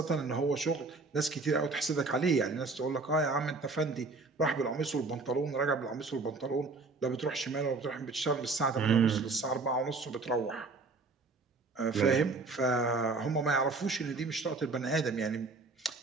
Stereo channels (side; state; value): left; quieter; 3.7 dB